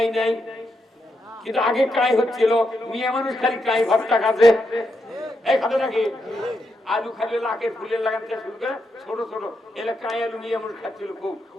নাই, কিন্তু আগে কাই হচ্ছিল, মেয়ে মানুষ খালি কাই ভর্তা খাচ্ছে, এই খাতে নাকি আলু খালি লাকে ফুলের লাগান থেকে শুরু করে ছোট ছোট এলাকায় আলু নিয়ে এমন খাচ্ছিল খুব।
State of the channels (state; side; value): normal; both; correlation 0.83